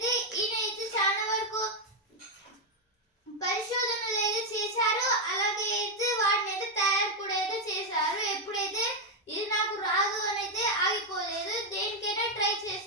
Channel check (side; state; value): both; normal; correlation 0.03